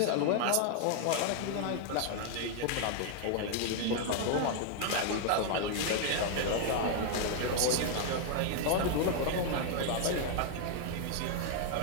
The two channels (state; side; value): different; both; correlation 0.00